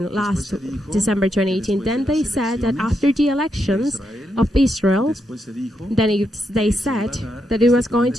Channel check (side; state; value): both; normal; correlation 0.82